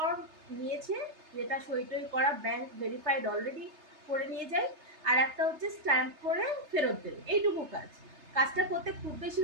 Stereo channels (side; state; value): left; late; 3.3 ms